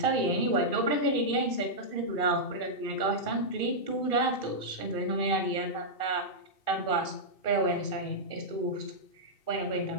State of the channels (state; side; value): late; right; 2.4 ms